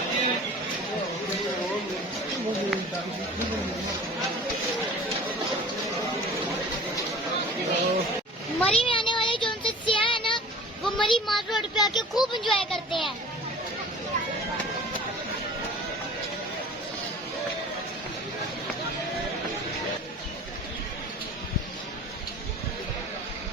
मरी में आने वाले जो उनसे सियाह है ना, वो मरी माल रोड पे आके खूब एंजॉय करते हैं।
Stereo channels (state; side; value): normal; both; correlation 0.43